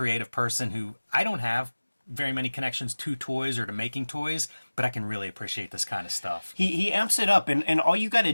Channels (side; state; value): both; inverted; correlation -1.00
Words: person who I don't have very many connections to toys or to making toys, but I can really appreciate this kind of stuff. He amps it up, and all you got to